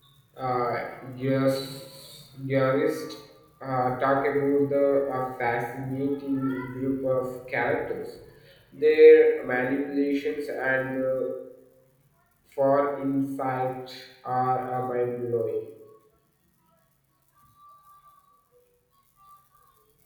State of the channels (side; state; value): both; identical; correlation 1.00